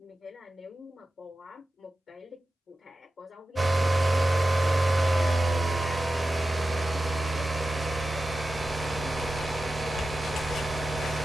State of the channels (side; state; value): both; normal; correlation 0.93